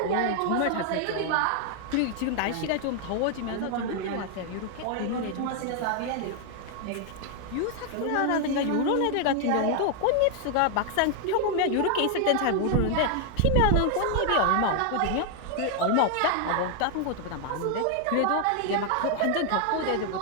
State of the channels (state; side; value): different; both; correlation 0.00